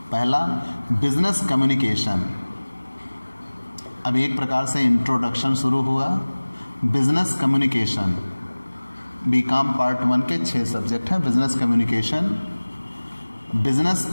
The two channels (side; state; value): both; inverted; correlation -1.00